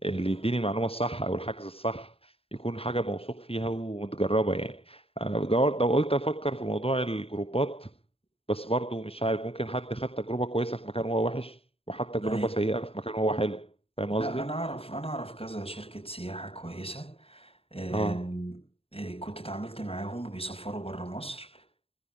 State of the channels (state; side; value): late; right; 0.28 ms